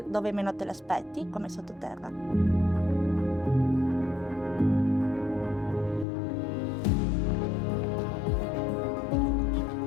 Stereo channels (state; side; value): drops out; right; at 6.1 s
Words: dove meno te l'aspetti, come sottoterra.